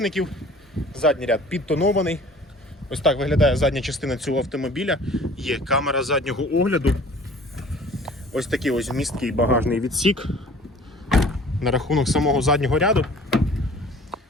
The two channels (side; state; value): both; normal; correlation 0.48